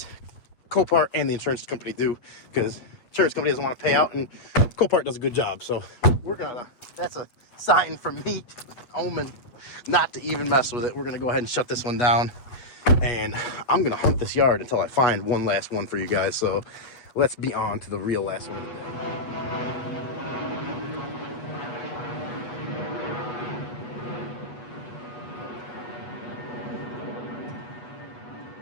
Copart and the insurance company do, because insurance company doesn't want to pay out, and Copart does a good job. So that's a sign from me, omen, not to even mess with it. We're going to go ahead and shut this one down. And I'm going to hunt this yard until I find one last one for you guys. So let's be on to the real last one.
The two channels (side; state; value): right; late; 8.2 ms